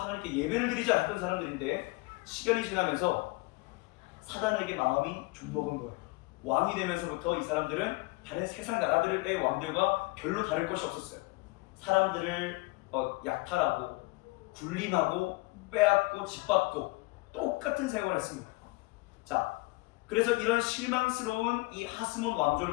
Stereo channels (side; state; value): right; quieter; 24.3 dB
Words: 예배를 드리자 했던 사람들인데 시간이 지나면서 사단에게 마음이 좀먹은 거예요. 왕이 되면서부터 이 사람들은 다른 세상 나라들의 왕들과 별로 다를 것이 없었어요. 사람들을 약탈하고 굴림하고 빼앗고 짓밟고 똑같은 생활을 했습니다. 자, 그래서 이런 실망스러운 이 하스몬